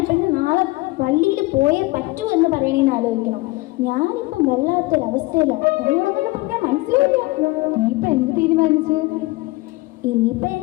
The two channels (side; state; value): right; quieter; 21.8 dB